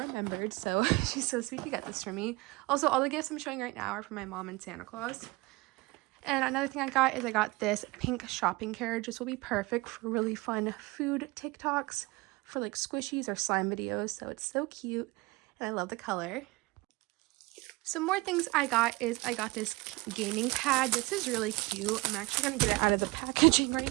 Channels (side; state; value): left; quieter; 22.9 dB